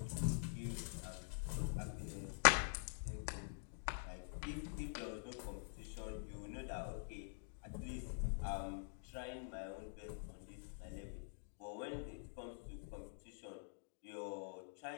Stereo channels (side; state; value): right; silent; digital silence